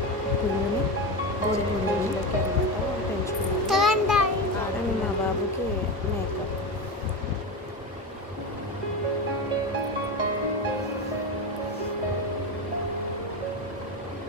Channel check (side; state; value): both; normal; correlation 0.20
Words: పుంజుని కోడి పుంజులకి అనమాట పెంచుకున్నాను. ఆడని మా బాబుకి మేక.